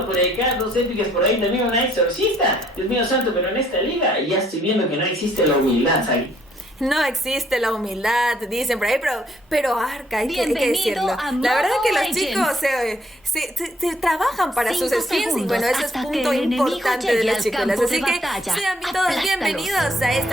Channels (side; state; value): both; normal; correlation 0.66